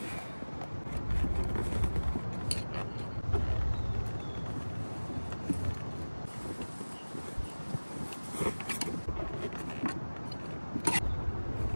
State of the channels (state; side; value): inverted; both; correlation -1.00